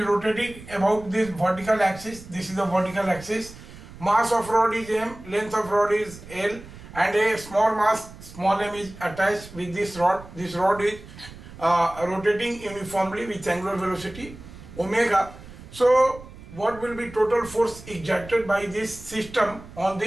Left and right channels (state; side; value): noise; right; rumble, 17 dB below the sound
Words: rotating about this vertical axis. This is the vertical axis. Mass of rod is m, length of rod is l, and a small mass small m is attached with this rod. This rod is rotating uniformly with angular velocity omega. So what will be total force exerted by this system on